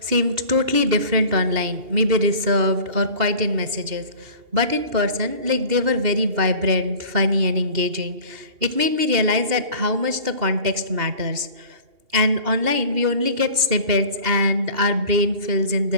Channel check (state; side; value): late; left; 2.8 ms